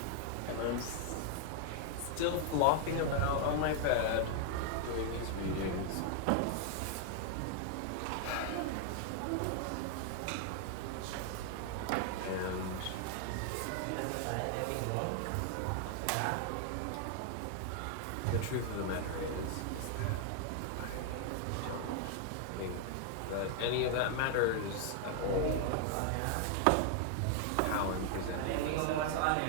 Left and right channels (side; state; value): both; different; correlation 0.00